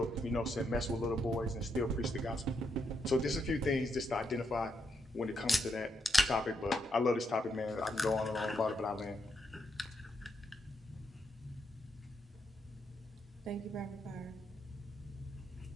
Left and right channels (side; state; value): both; normal; correlation 0.79